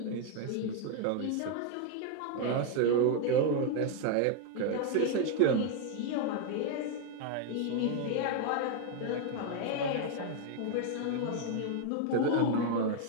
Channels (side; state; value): both; different; correlation 0.01